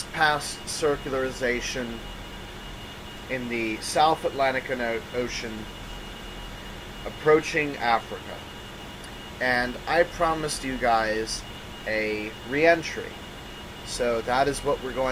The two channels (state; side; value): identical; both; correlation 1.00